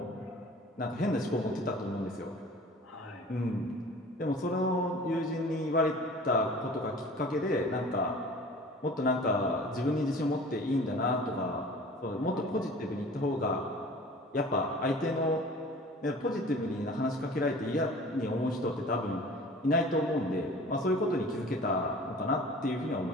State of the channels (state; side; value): normal; both; correlation 0.44